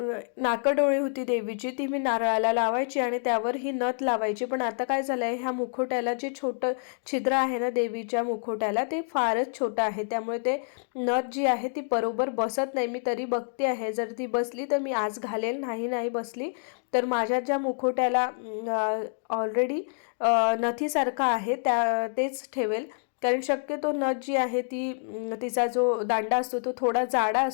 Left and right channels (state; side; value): silent; right; digital silence